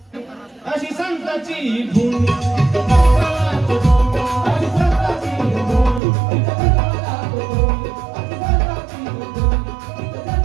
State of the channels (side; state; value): left; drops out; at 6.0 s